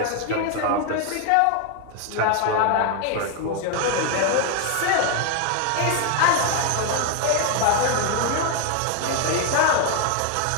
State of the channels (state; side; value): different; both; correlation 0.00